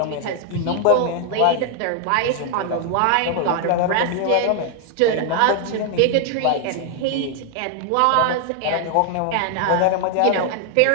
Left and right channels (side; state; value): both; different; correlation 0.00